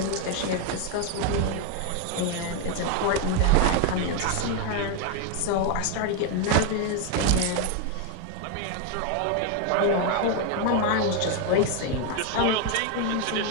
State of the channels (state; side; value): different; both; correlation 0.01